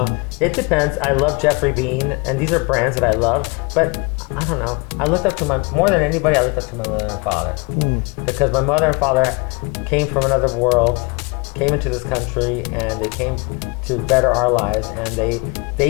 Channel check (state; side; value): quieter; right; 29.3 dB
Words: It depends. I love Jeffrey Bean, and these are brands that I love, but I don't know. I looked up to more than anybody, I looked up to my mother and father. Because my mother and father came from another world, came into this country, and they came to better our lives, and they